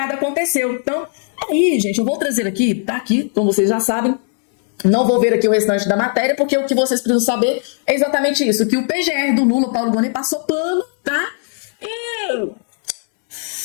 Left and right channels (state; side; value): silent; right; 60 dB below the other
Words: aconteceu. Então, aí, gente, eu vou trazer aqui, tá aqui, como vocês já sabem. Não vou ver aqui o restante da matéria, porque o que vocês precisam saber é exatamente isso, que o PGR do Lula, Paulo Gonet, passou pano, tá? E